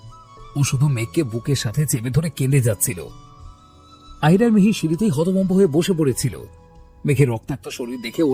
ও শুধু মেঘকে বুকের সাথে চেপে ধরে কেঁদে যাচ্ছিল। আহির আর মিহির সিঁড়িতেই হতভম্ব হয়ে বসে পড়েছিল। মেঘের রক্তাক্ত শরীর দেখে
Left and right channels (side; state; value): both; identical; correlation 1.00